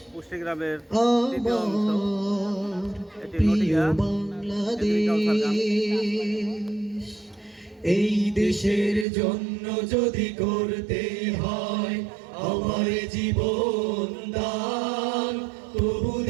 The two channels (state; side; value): drops out; left; at 9.1 s